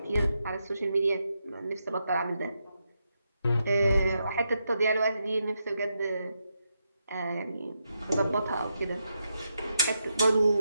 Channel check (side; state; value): both; inverted; correlation -0.84